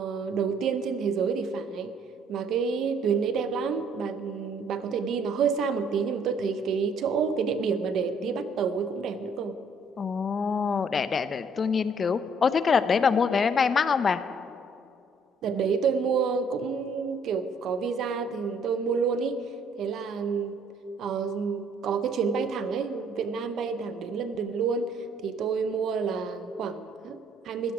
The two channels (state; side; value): normal; both; correlation 0.62